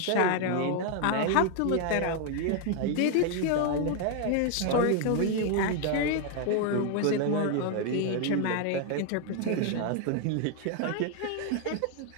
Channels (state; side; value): different; both; correlation 0.00